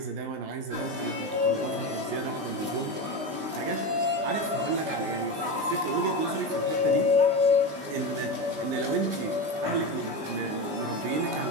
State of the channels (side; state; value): left; late; 19 ms